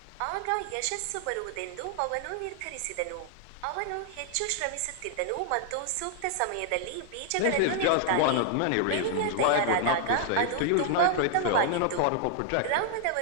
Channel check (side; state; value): both; different; correlation -0.01